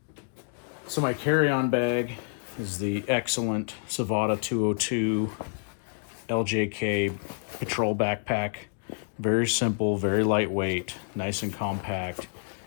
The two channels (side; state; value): right; silent; 58 dB below the other